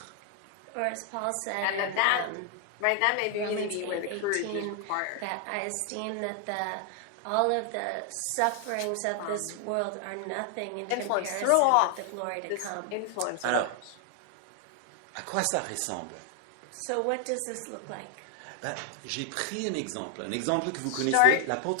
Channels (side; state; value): both; different; correlation 0.00